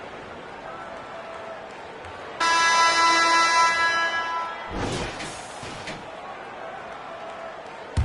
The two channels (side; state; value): both; identical; correlation 1.00